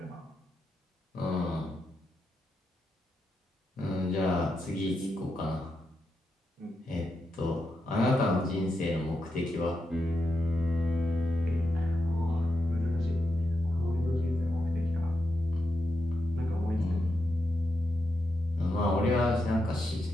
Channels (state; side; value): normal; both; correlation 0.86